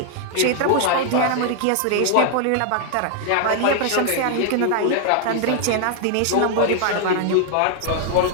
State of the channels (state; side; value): different; both; correlation 0.00